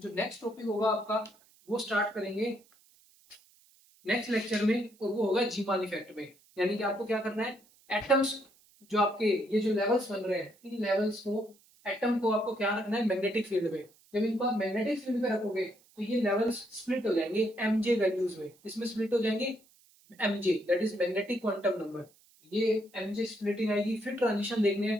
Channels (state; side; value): noise; right; hiss, 30 dB below the sound